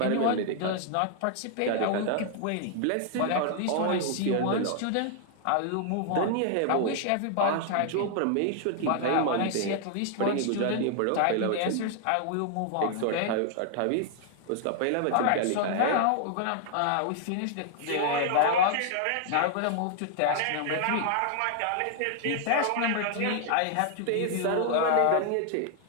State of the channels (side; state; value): both; different; correlation 0.00